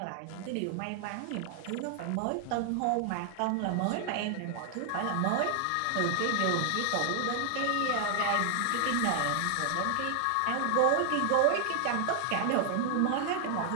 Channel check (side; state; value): both; different; correlation 0.00